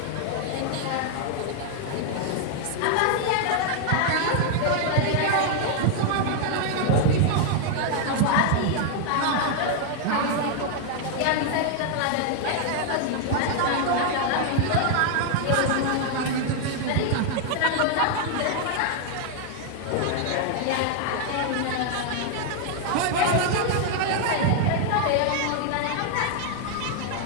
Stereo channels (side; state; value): both; different; correlation 0.00